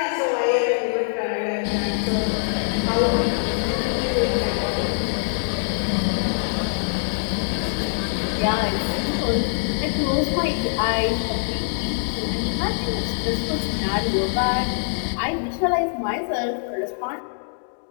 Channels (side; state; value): right; silent; digital silence